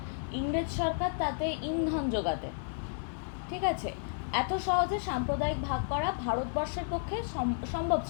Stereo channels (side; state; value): right; silent; digital silence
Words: ইংরেজ সরকার তাতে ইন্ধন যোগাতে। ঠিক আছে, এত সহজে সাম্প্রদায়িক ভাগ করা ভারতবর্ষের পক্ষে সম্ভব